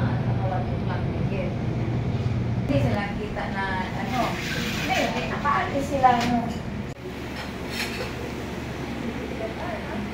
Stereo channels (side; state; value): both; identical; correlation 1.00